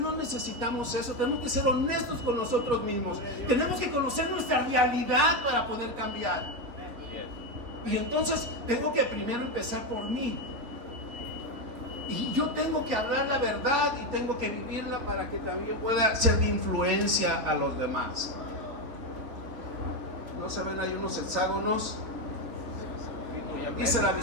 necesitamos eso. Tenemos que ser honestos con nosotros mismos. Tenemos que conocer nuestra realidad para poder cambiar. Y entonces tengo que primero empezar por mí. Y yo tengo que hablar la verdad y tengo que vivirla para que también pueda ser de influencia a los demás. ¿No se ven ahí unos hexágonos? Dice la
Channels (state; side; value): late; left; 4.0 ms